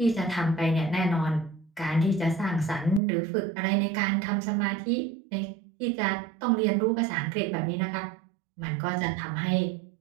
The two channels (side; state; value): left; drops out; at 3.0 s